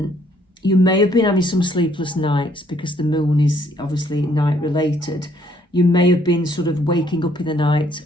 may have been having some sleepless nights because the moon is obviously night related. You may have been sort of waking up in the night,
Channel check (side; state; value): both; normal; correlation 0.66